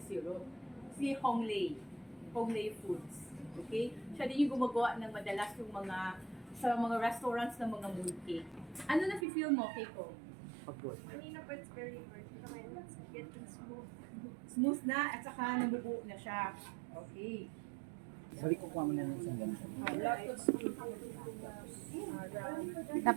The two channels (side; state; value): left; drops out; at 9.2 s